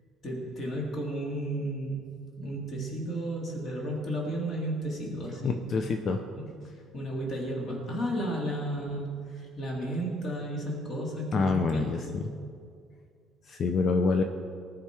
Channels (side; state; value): both; normal; correlation 0.65